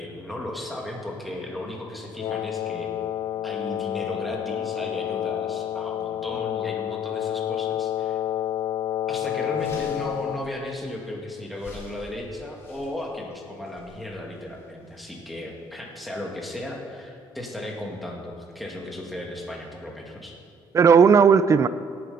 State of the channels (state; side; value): normal; both; correlation 0.58